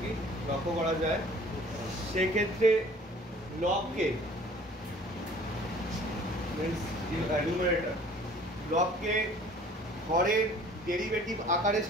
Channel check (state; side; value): normal; both; correlation 0.51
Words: কি লক্ষ্য করা যায়, সেক্ষেত্রে লবকে নিউমারেটর লবকে হরের ডেরিভেটিভ আকারে